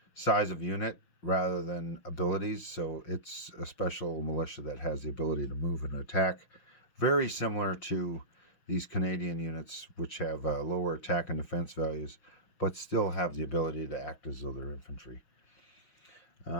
size of unit rather than abilities. So it's a special militia that has the ability to move and attack. Very similar to these Canadian units, which have lower attack and defense values, but still have the ability to act as though they're infantry.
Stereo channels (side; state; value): right; late; 6.0 ms